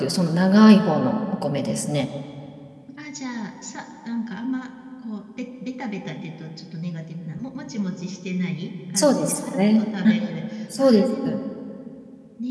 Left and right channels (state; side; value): identical; both; correlation 1.00